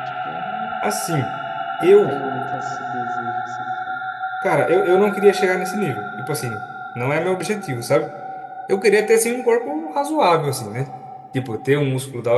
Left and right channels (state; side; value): identical; both; correlation 1.00